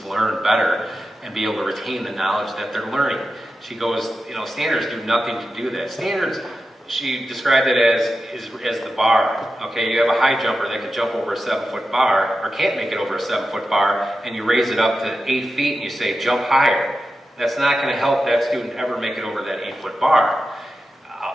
learn better and be able to retain the knowledge that they're learning. She goes, you know, standards do nothing to do that. Standards, she described it as the bar. Okay, you have a high jumper that can jump over a 7-foot bar, or can't make it over a 7-foot bar, and you raise it up to 8 feet and you say, jump higher. That's not going to help that student ever make it over that 8-foot bar.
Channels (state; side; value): normal; both; correlation 0.91